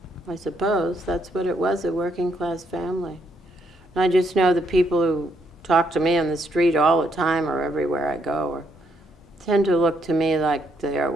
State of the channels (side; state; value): both; normal; correlation 0.74